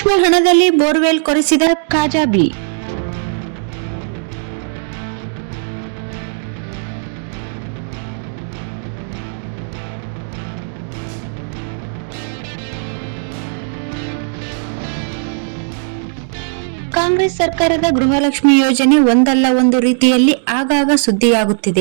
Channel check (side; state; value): left; silent; digital silence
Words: ಹಣದಲ್ಲಿ ಬೋರ್ವೆಲ್ ಕೊರೆಸಿದ ಕಾಜಾಬಿ. ಕಾಂಗ್ರೆಸ್ ಸರ್ಕಾರದ ಗೃಹಲಕ್ಷ್ಮಿ ಯೋಜನೆ ಒಂದಲ್ಲ ಒಂದು ರೀತಿಯಲ್ಲಿ ಆಗಾಗ